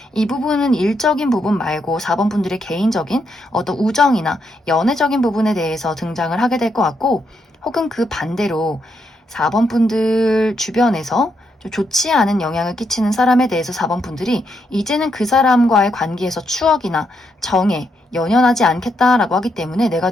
이 부분은 일적인 부분 말고 4번 분들의 개인적인 어떤 우정이나 연애적인 부분에 대해서 등장을 하게 될 것 같고 혹은 그 반대로 4번 분들 주변에서 좀 좋지 않은 영향을 끼치는 사람에 대해서 4번 분들이 이제는 그 사람과의 관계에서 추억이나 정에 연연하지 않겠다라고 하기 때문에 내가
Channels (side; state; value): both; normal; correlation 0.79